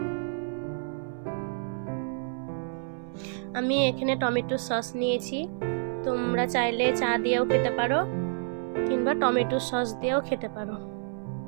আমি এখানে টমেটো সস নিয়েছি। তোমরা চাইলে চা দিয়েও খেতে পারো কিংবা টমেটো সস দিয়েও খেতে পারো।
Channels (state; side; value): silent; left; 59 dB below the other